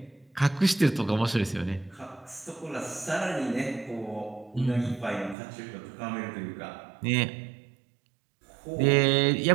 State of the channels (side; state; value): left; drops out; at 5.4 s